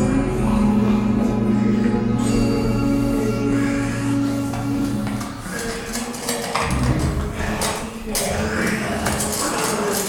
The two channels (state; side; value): identical; both; correlation 1.00